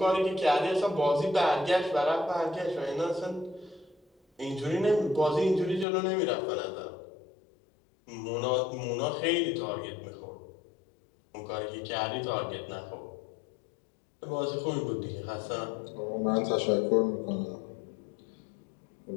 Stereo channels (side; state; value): right; drops out; at 5.9 s